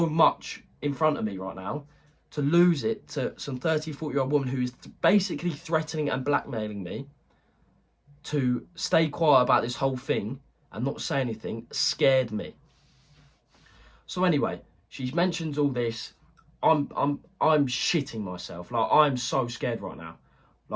much in front of me right now. To lose it to some 30, 40-year-old woman who is basically threatening and blackmailing me to stay quiet about this whole thing and not say anything scared me. So anyway, she mentions all this. I'm shitting myself. Like, I'm so scared right now.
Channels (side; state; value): both; identical; correlation 1.00